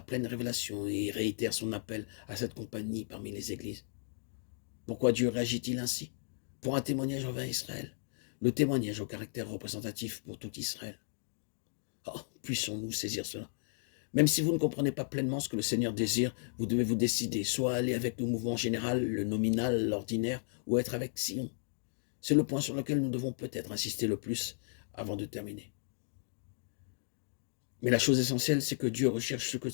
pleine révélation et réitère son appel à cette compagnie parmi les églises. Pourquoi Dieu réagit-il ainsi? Pour un témoignage envers Israël, le témoignage au caractère représentatif pour tout Israël. Oh, puissons-nous saisir cela. Même si vous ne comprenez pas pleinement ce que le Seigneur désire, vous devez vous décider, soit aller avec le mouvement général, le nominal, l'ordinaire, ou être avec Sion. C'est le point sur lequel nous devons peut-être insister le plus avant de terminer. Mais la chose essentielle, c'est que Dieu recherche ce que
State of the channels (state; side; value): silent; right; digital silence